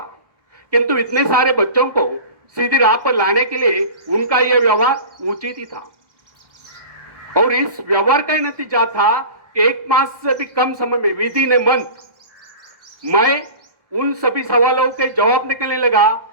किंतु इतने सारे बच्चों को सीधी राह पर लाने के लिए उनका यह व्यवहार उचित ही था। और इस व्यवहार का नतीजा था कि 1 मास से भी कम समय में, विदिन ए मंथ, मैं उन सभी सवालों के जवाब निकलने लगा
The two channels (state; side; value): late; left; 1.4 ms